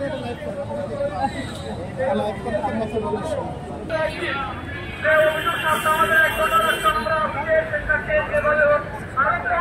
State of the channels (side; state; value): both; identical; correlation 1.00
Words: লাইভ করেন, লাইভ করতে